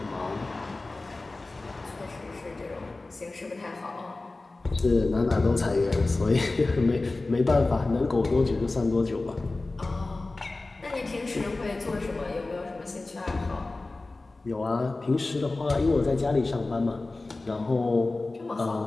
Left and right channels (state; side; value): quieter; right; 3.2 dB